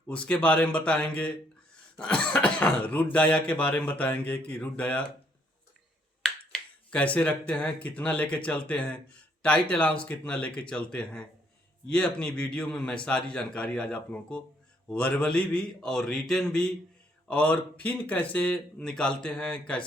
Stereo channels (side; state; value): both; normal; correlation 0.69